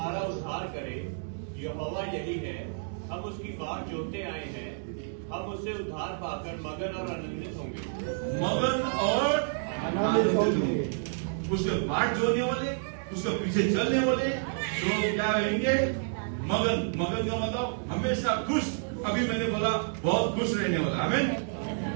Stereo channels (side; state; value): left; silent; digital silence